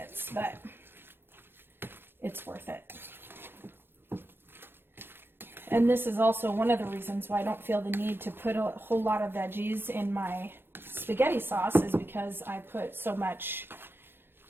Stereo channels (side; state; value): left; late; 0.10 ms